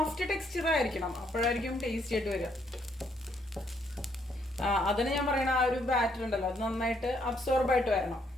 ടെക്സ്ചർ ആയിരിക്കണം, അപ്പോഴായിരിക്കും ടേസ്റ്റി ആയിട്ട് വരിക. അതിന് ഞാൻ പറയണ ആ ഒരു ബാറ്റർ ഉണ്ടല്ലോ അത് നന്നായിട്ട് അബ്സോർബ് ആയിട്ട് വരണം.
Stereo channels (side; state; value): both; normal; correlation 0.71